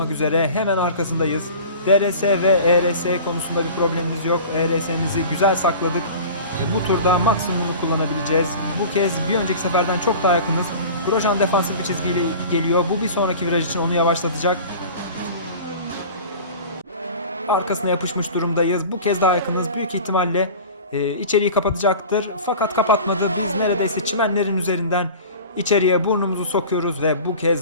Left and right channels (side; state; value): both; inverted; correlation -0.38